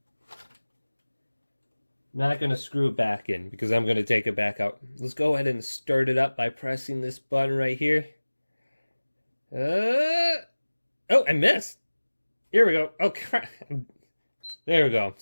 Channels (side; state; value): both; inverted; correlation -1.00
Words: I'm not going to screw it back in because I'm going to take it back out. Let's go ahead and start it up by pressing this button right here. Oh, I missed. Here we go. Oh, crap. There we go.